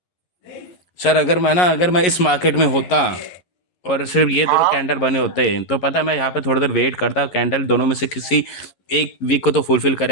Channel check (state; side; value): late; right; 11 ms